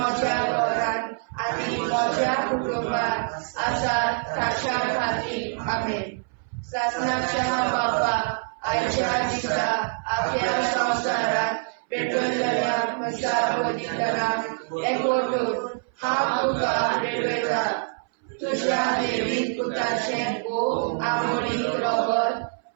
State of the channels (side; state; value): left; silent; 61 dB below the other